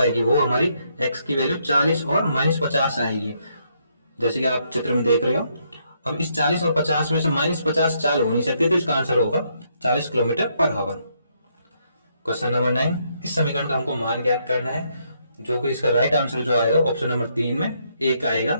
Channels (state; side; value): inverted; both; correlation -0.74